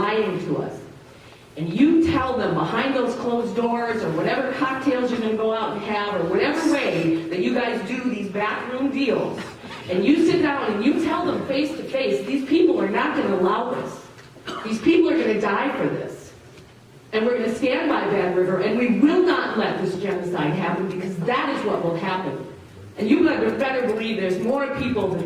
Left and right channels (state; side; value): identical; both; correlation 1.00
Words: to us, and you tell them behind those closed doors, or whatever cocktails you're going to go out and have, or whatever way that you guys do these backroom deals, and you sit down and you tell them face to face, these people are not going to allow this. These people are going to die for this. And we're going to stand by Bad River, and we will not let this genocide happen, because that is what will happen. And you better believe there's more people